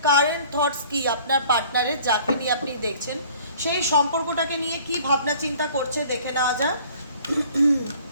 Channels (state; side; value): inverted; both; correlation -0.52